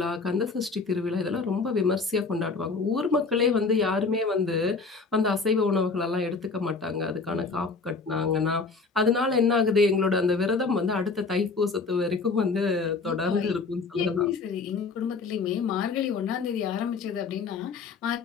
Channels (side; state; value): right; quieter; 4.4 dB